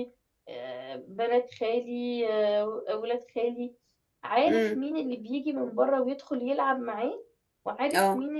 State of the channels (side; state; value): both; identical; correlation 1.00